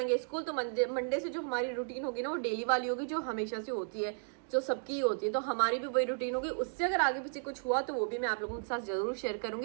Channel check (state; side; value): silent; left; digital silence